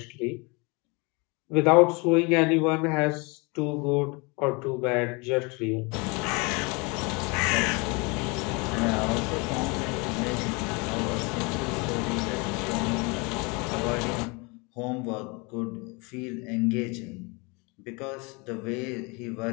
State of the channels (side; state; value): right; quieter; 28.9 dB